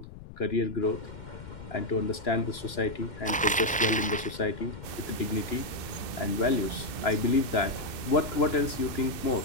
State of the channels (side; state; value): left; noise; rumble, 15 dB below the sound